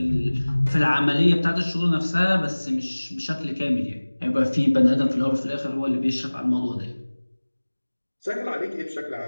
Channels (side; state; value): both; inverted; correlation -1.00